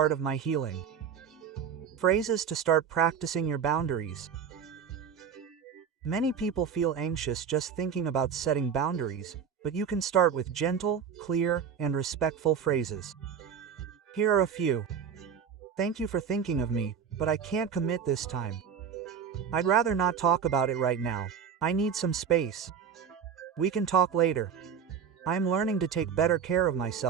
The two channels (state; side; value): quieter; left; 7.3 dB